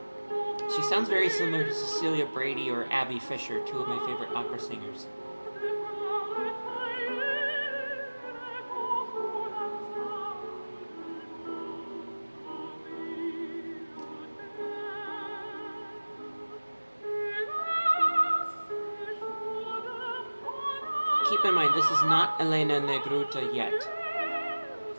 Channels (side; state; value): both; inverted; correlation -1.00